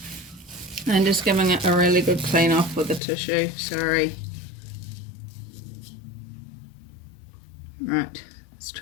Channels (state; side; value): drops out; right; at 3.0 s